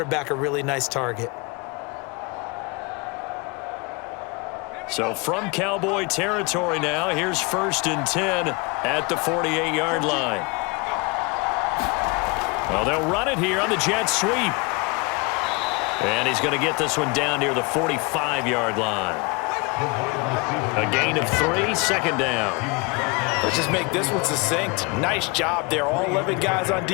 a really nice target. So from Cowboy territory now, here's 1st and 10 at the 48-yard line. Well, they'll run it here on the jet sweep. And he's going to get this one down near the 45-yard line. A gain of 3, 2nd down. Let's just make this one succinct. Nice job there. All 11 guys on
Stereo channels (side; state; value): right; quieter; 27.6 dB